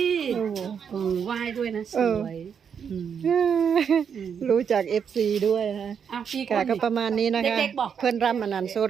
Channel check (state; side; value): quieter; left; 7.3 dB